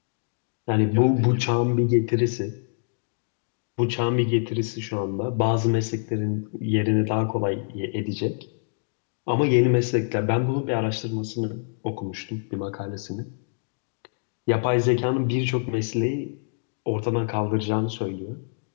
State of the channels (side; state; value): right; silent; digital silence